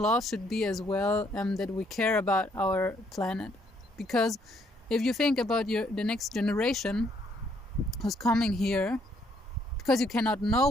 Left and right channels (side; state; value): both; normal; correlation 0.69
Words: should be as well, that we care about our planet. Because if you think about the next generation who's coming here, because you cannot know